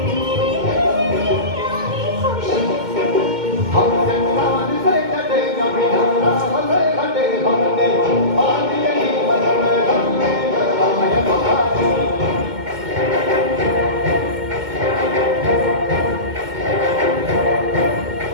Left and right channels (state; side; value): late; left; 2.2 ms